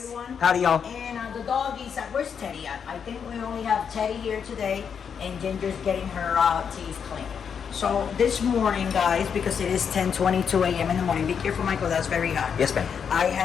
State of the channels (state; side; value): quieter; right; 7.1 dB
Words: Howdy, y'all. And the doggies, where's Teddy at? I think we only have Teddy here today, and Ginger's getting her teeth cleaned. So this morning, guys, because it is 10:22 a.m. in the morning. Be careful, Michael. That's very hot. Yes, ma'am. I